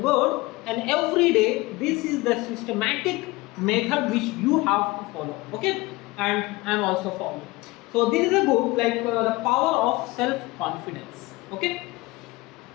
word, and every day this is the systematic method which you have to follow. Okay, and I am also following. So this is a book like the power of self confidence. Okay,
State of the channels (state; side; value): quieter; right; 21.6 dB